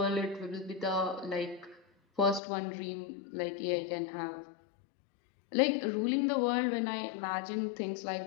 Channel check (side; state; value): right; drops out; at 2.4 s